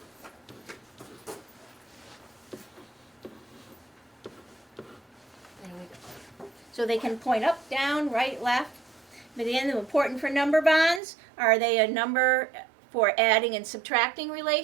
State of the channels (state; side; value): drops out; left; at 11.0 s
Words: There we go. So they can point up, down, right, left. But again, important for number bonds, are they a number for adding and subtracting